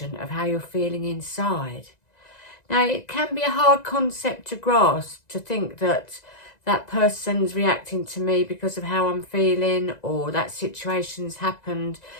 of how you're feeling inside. Now, it can be a hard concept to grasp, to think that that person's reacting to me because of how I'm feeling, or that situation's happened.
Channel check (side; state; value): right; late; 1.9 ms